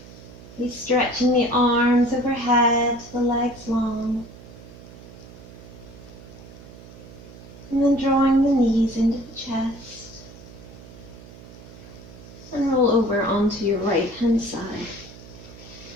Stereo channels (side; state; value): right; noise; hum, 18 dB below the sound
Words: Be stretching the arms overhead, the legs long. And then drawing the knees into the chest. And roll over onto your right hand side.